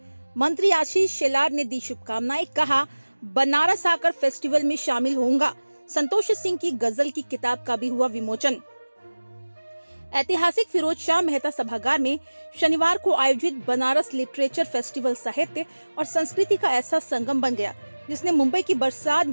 मंत्री आशीष शेलार ने दी शुभकामनाएं। कहा, बनारस आकर फेस्टिवल में शामिल होऊंगा। संतोष सिंह की गजल की किताब का भी हुआ विमोचन। ऐतिहासिक फिरोज शाह मेहता सभागार में शनिवार को आयोजित बनारस लिटरेचर फेस्टिवल साहित्य और संस्कृति का ऐसा संगम बन गया जिसने मुंबई की बरसात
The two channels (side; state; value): both; inverted; correlation -1.00